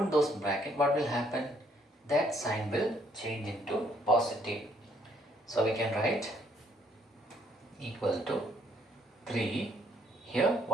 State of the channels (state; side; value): normal; both; correlation 0.67